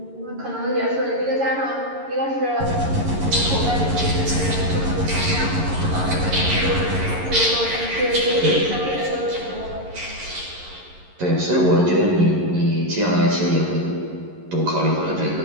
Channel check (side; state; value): left; late; 11 ms